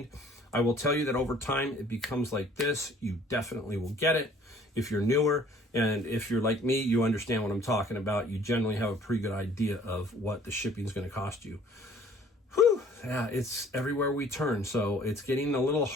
I will tell you that over time it becomes like this. You definitely will get it if you're newer. And if you're like me, you understand what I'm talking about. You generally have a pretty good idea of what the shipping is going to cost you. Whew, yeah, it's everywhere we turn. So it's getting a little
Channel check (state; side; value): normal; both; correlation 0.55